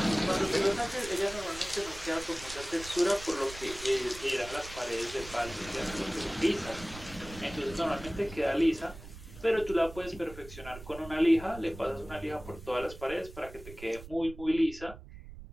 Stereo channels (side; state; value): right; noise; rumble, 15 dB below the sound